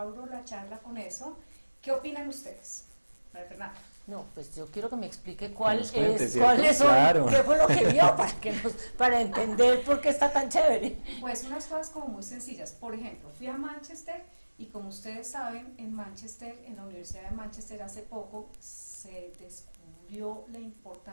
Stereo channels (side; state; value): both; inverted; correlation -1.00